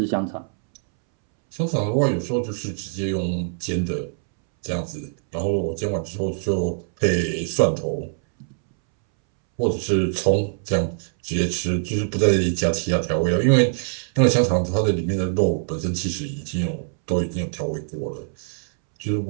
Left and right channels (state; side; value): silent; left; 63 dB below the other